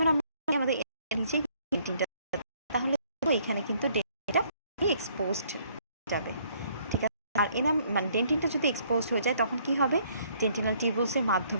আমরা আমাদের নিচেই ডেন্টিনটা, তাহলে এখানে কিন্তু ডেন্টিনটা এক্সপোজড যাবে। ঠিক আছে, আর ডেন্টিনটা যদি এক্সপোজড হয়ে যায় তখন কি হবে, ডেন্টিনাল টিউবুলসের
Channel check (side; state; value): both; inverted; correlation -0.64